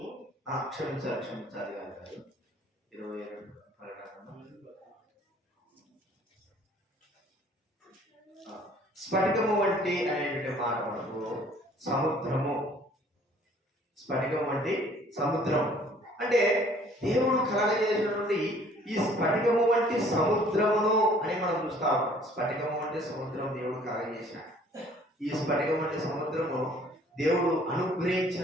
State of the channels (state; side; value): normal; both; correlation 0.56